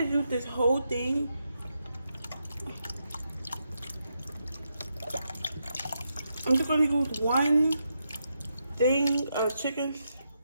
use this whole thing. I'm just gonna use one thing of chicken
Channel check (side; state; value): both; inverted; correlation -0.83